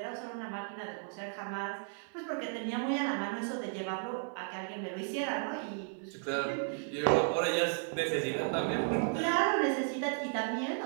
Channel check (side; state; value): left; silent; 55 dB below the other